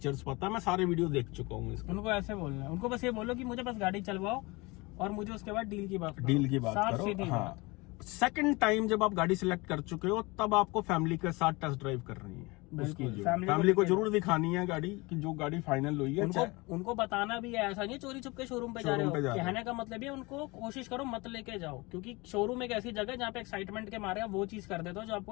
पता है, मैं सारे वीडियो देख चुका हूँ इसके। उनको ऐसे बोलना है, उनको बस ये बोलो कि मुझे बस गाड़ी चलवाओ और मुझे उसके बाद डील की बात करो। डील की बात साफ करो। सीधी हाँ, बात। सेकंड टाइम जब आप गाड़ी सिलेक्ट कर चुके हो तब आपको फैमिली के साथ टेस्ट ड्राइव करनी है। उसकी बिल्कुल, जो फैमिली फैमिली को लेके जरूर दिखानी है गाड़ी की जो गाड़ी फाइनल हुई है। उनको बताना भी है, ऐसा नहीं है चोरी छुप के शोरूम पे जा रहे शोरूम पे जा हो। रहे हो। कहने का मतलब ये उनको कोशिश करो मत लेके जाओ, क्योंकि शोरूम एक ऐसी जगह है जहाँ पे एक्साइटमेंट के मारे आप वो चीज कर देते हो जो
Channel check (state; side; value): quieter; right; 24.5 dB